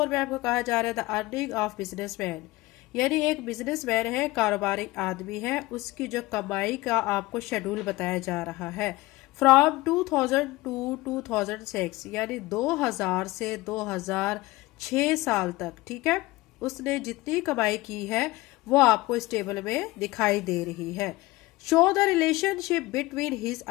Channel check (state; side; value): quieter; right; 20.0 dB